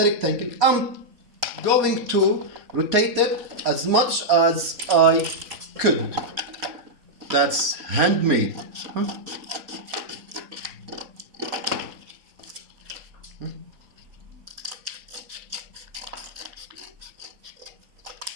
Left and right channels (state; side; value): late; left; 4.3 ms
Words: rectangle. I'm going to rotate it as much as I could. That's handmade.